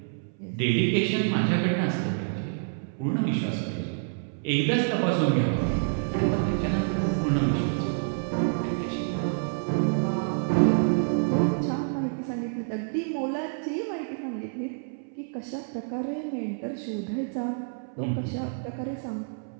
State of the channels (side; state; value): left; silent; 59 dB below the other